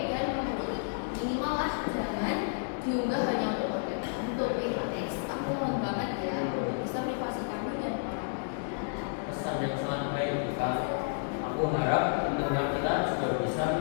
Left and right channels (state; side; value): silent; right; digital silence